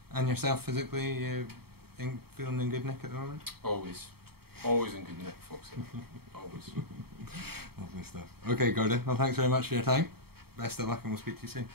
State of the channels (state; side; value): late; left; 0.95 ms